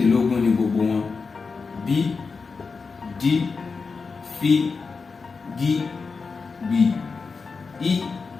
ni gbogbo wọn: B, D, F, G, B, I,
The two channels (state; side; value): quieter; right; 4.7 dB